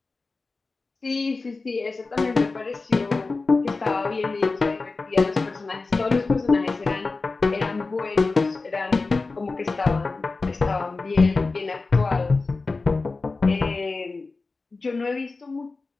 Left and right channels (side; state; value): right; quieter; 3.8 dB